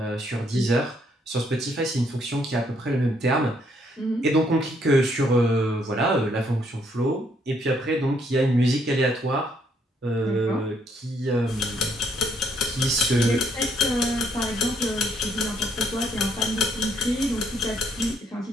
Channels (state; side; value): normal; both; correlation 0.70